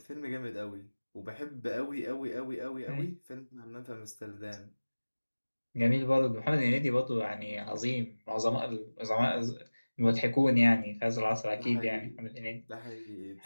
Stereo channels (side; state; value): both; inverted; correlation -1.00